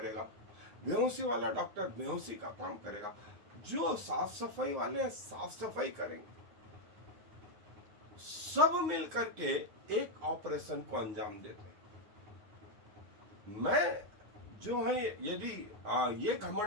बेहोशी वाला डॉक्टर बेहोशी का काम करेगा, जो साफ सफाई वाले साफ सफाई करेंगे। सब मिल करके एक ऑपरेशन को अंजाम देते हैं। मैं जो है यदि ये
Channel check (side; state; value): left; late; 9.5 ms